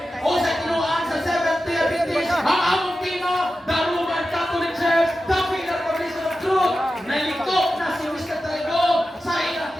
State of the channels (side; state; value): both; normal; correlation 0.92